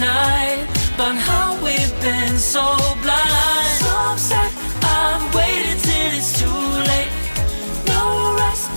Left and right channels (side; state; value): both; inverted; correlation -1.00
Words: night about how we've been so blind. So upset, I've waited till it's too late. No rest